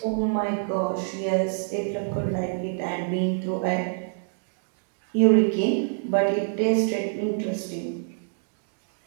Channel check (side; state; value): left; silent; digital silence